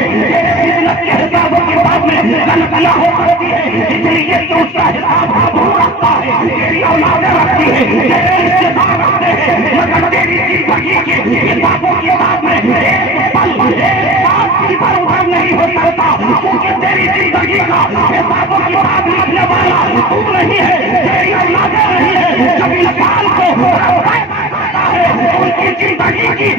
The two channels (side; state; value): both; normal; correlation 0.37